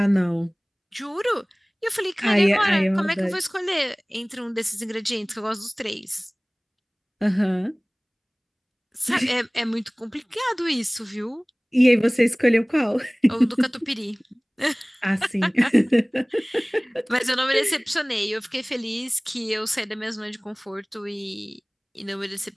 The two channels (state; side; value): identical; both; correlation 1.00